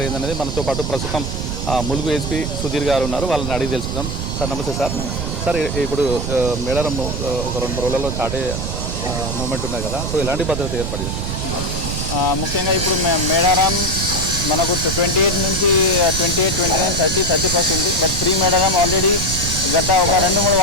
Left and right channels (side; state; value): right; noise; rumble, 3 dB below the sound